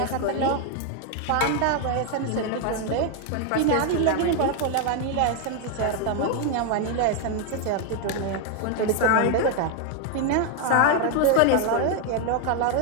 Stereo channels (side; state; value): both; different; correlation 0.01